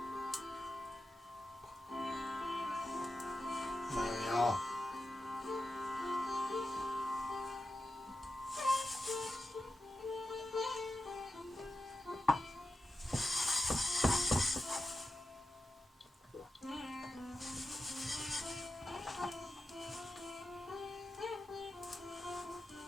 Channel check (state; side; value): normal; both; correlation 0.90